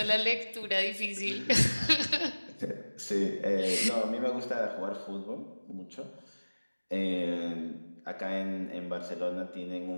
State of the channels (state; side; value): inverted; both; correlation -1.00